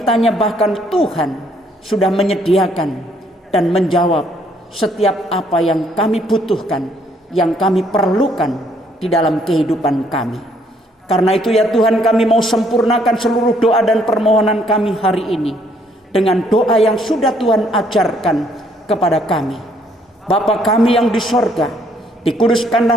bahkan Tuhan sudah menyediakan dan menjawab setiap apa yang kami butuhkan, yang kami perlukan di dalam kehidupan kami. Karena itu ya Tuhan, kami mau sempurnakan seluruh doa dan permohonan kami hari ini dengan doa yang sudah Tuhan ajarkan kepada kami. Bapa kami yang di sorga,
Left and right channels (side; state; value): both; normal; correlation 0.67